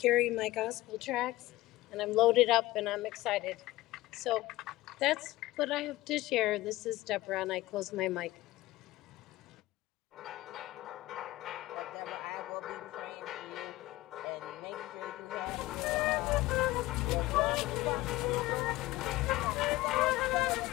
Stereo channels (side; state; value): right; quieter; 18.0 dB